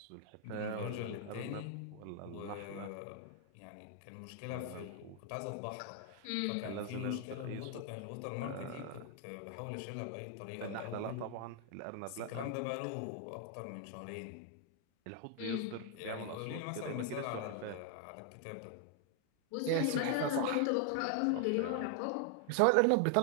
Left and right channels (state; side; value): different; both; correlation 0.00